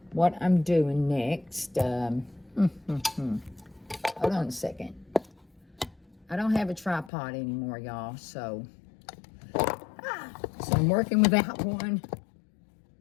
what I'm doing next. Hold on a second. I don't have a tripod anymore, y'all, so I'm working without one.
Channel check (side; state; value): right; drops out; at 7.1 s